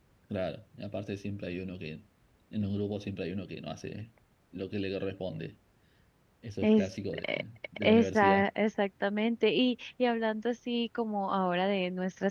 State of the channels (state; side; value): identical; both; correlation 1.00